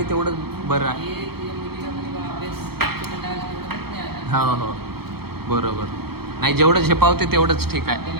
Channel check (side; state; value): left; late; 0.96 ms